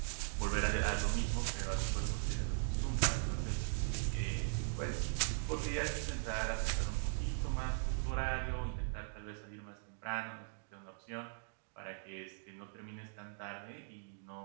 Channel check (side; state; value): left; silent; digital silence